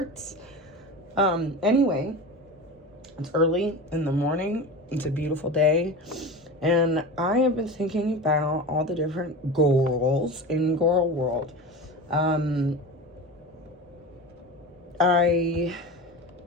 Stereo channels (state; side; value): normal; both; correlation 0.29